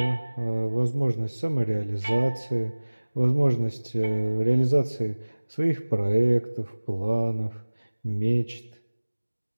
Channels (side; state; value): both; inverted; correlation -1.00